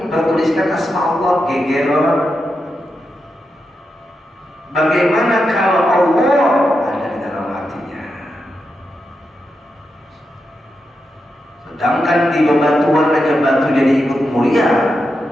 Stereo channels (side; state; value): both; normal; correlation 0.87